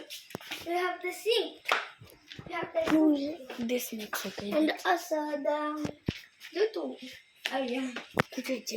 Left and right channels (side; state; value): both; identical; correlation 1.00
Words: we have the sink. We have the sink. This makes okay. And also the YouTube. Oh yeah.